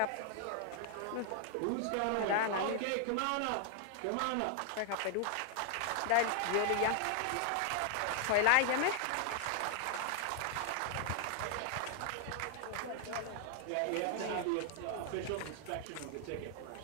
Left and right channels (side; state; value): both; different; correlation 0.00